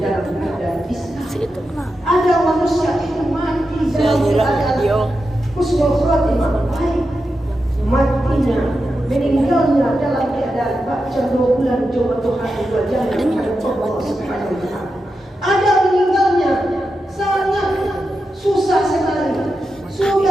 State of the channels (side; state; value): both; normal; correlation 0.89